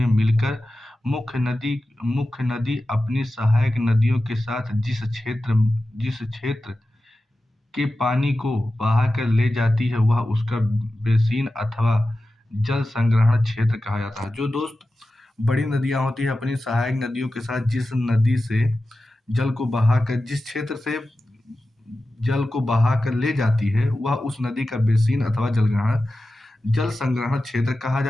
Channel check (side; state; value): both; normal; correlation 0.94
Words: मिलकर मुख्य नदी अपनी सहायक नदियों के साथ जिस क्षेत्र के पानी को बहाकर ले जाती है वह उसका बेसिन अथवा जल संग्रहण क्षेत्र कहा जाता है। जो दोस्त बड़ी नदियां होती है अपनी सहायक नदियों के साथ जिस नदी से जल को बहाकर जिस क्षेत्र से जल को बहाकर ले जाती है वह उस नदी का बेसिन अथवा जल संग्रहण क्षेत्र कहा